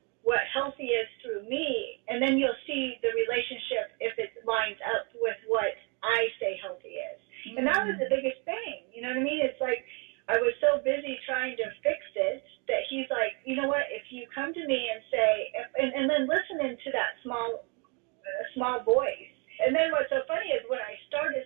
what healthy is through me. And then you'll see the relationship if it lines up with what I say healthy is. Mm-hmm. And that was the biggest thing. You know what I mean? It's like I was so busy trying to fix it that he's like, you know what, if you come to me and say, and then listening to that small voice. And then what's so funny is when I started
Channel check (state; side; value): quieter; left; 34.0 dB